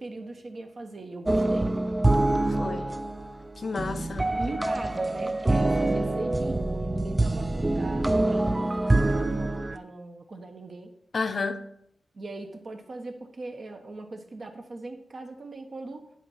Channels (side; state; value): both; normal; correlation 0.97